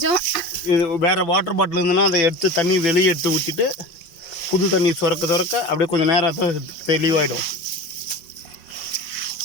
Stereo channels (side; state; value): right; late; 5.5 ms